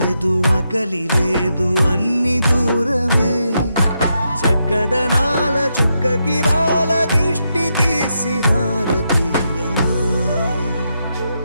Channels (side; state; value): both; inverted; correlation -0.83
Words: ఆకలి లేదు అన్ని దూరమే చక్కదనాల చుక్కకి వాళ్ళ దిష్టి తీసి హారతీయనా